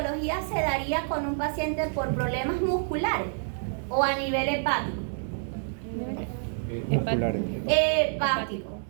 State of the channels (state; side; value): silent; left; digital silence